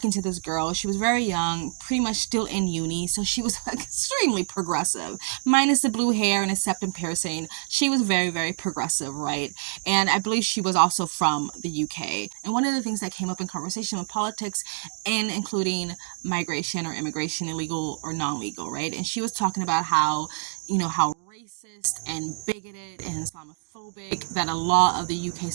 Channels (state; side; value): silent; left; 61 dB below the other